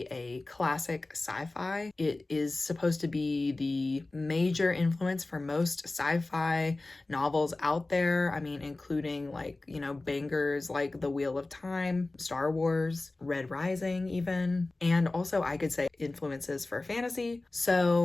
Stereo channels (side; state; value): right; quieter; 3.1 dB